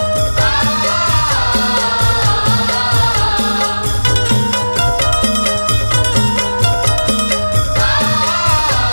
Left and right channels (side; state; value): both; inverted; correlation -1.00